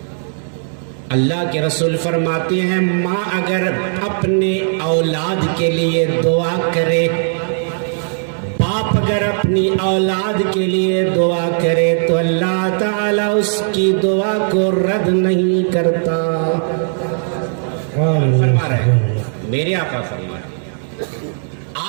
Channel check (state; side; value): silent; left; 64 dB below the other